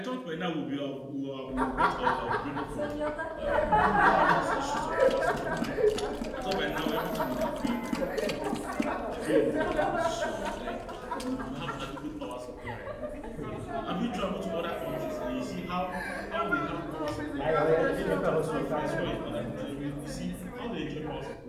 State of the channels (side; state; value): both; identical; correlation 1.00